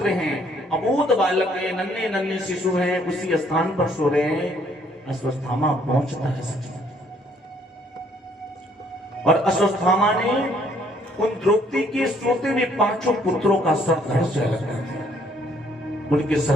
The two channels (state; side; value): normal; both; correlation 0.64